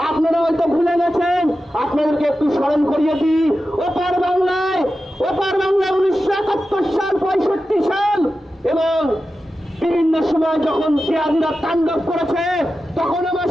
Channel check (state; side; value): normal; both; correlation 0.92